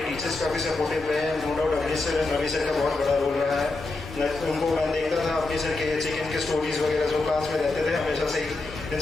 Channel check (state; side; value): quieter; right; 3.3 dB